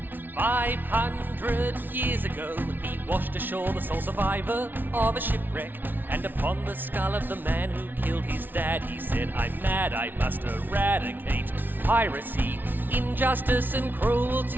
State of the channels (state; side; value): late; left; 0.090 ms